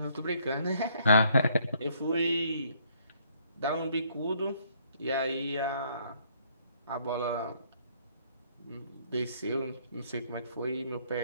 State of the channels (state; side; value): inverted; both; correlation -0.66